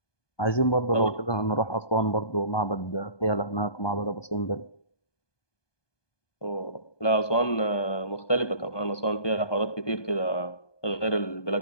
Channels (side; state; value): right; late; 1.2 ms